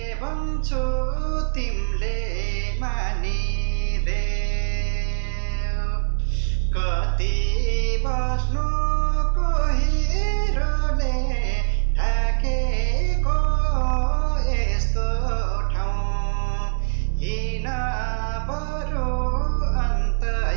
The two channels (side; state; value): left; silent; digital silence